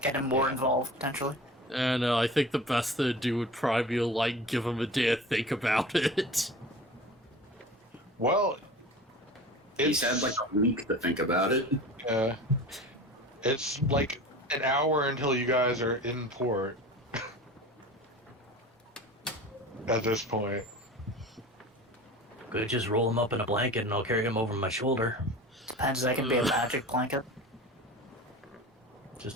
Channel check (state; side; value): normal; both; correlation 0.37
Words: Get him more involved potentially. And I think the best thing to do would probably be to, like, give him a day to think about it. Well, He's had like a week to think about it. it's like an hour until you guys are in port. At this point. Could just roll him up in a blanket and I'll carry him over my shoulder. Depends, that can be a magic blanket.